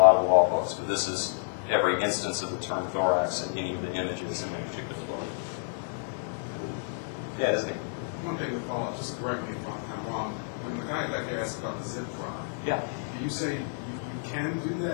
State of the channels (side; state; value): right; silent; digital silence